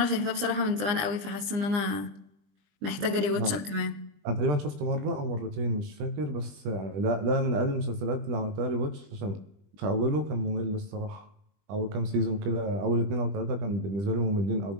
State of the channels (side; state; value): left; late; 20 ms